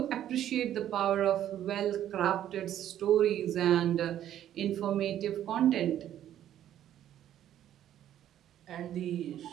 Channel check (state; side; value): quieter; left; 11.4 dB